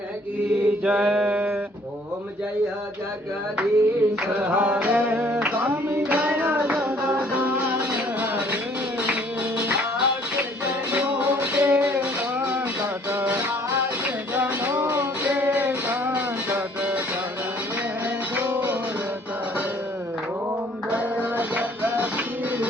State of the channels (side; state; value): both; normal; correlation 0.59